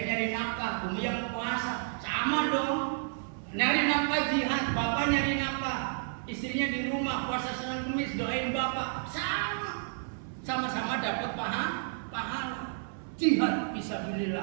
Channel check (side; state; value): left; silent; 57 dB below the other